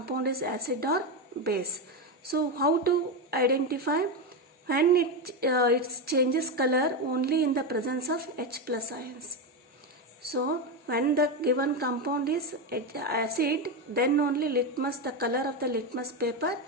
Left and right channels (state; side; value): normal; both; correlation 0.11